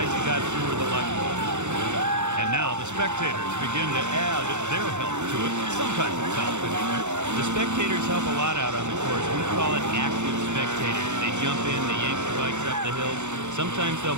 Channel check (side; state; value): left; late; 0.83 ms